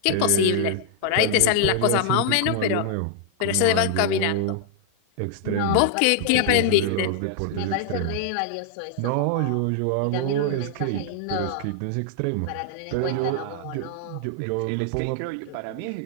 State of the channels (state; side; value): different; both; correlation 0.00